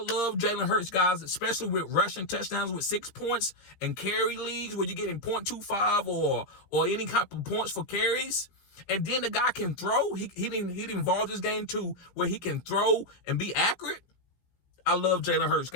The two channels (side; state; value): right; late; 16 ms